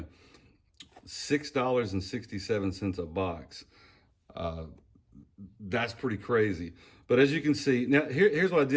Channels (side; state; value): both; identical; correlation 1.00